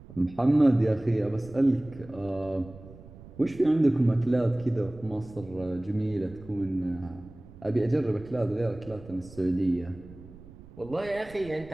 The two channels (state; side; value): noise; right; rumble, 19 dB below the sound